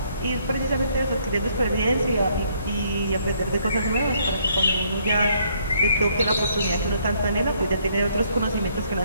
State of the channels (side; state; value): both; inverted; correlation -0.68